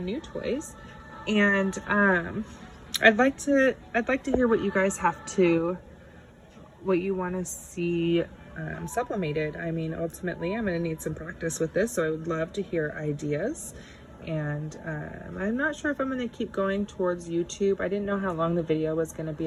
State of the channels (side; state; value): both; identical; correlation 1.00